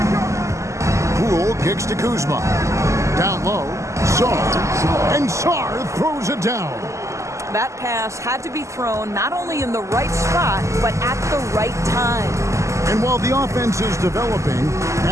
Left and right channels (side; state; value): left; late; 0.14 ms